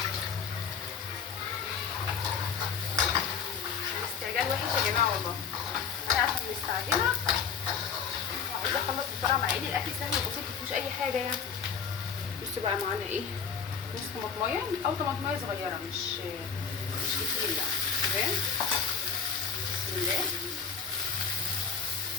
الاستعجال وحش يا جماعه والله. انا عشان مستعجله وعايزه اخلص بسرعه، مع ان الاكل سهل وبسيط مفيهوش اي حاجه يعني. بصوا بقى معانا ايه نص طماطمايه او طماطمايه صغيره، مش كتير يعني. تمام. بسم الله.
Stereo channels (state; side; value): quieter; right; 6.5 dB